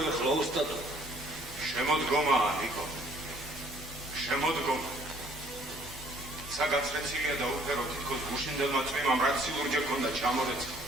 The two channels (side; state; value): both; normal; correlation 0.60